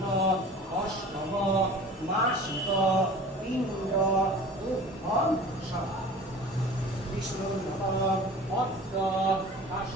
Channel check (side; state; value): both; normal; correlation 0.41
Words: অষ্টম মাসিক পিণ্ড তুভ্যং সাধা। বিষ্ণুর নাম অদ্য